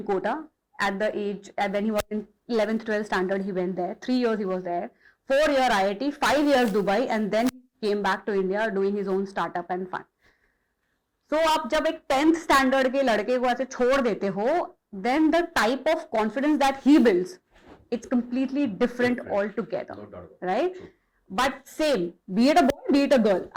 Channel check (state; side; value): identical; both; correlation 1.00